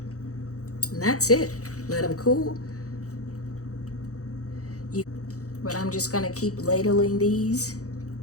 And that's it. Let them cool. But I'm just gonna keep ladling these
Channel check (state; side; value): late; right; 0.66 ms